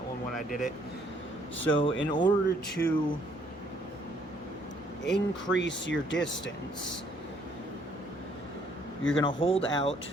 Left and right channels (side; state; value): both; normal; correlation 0.65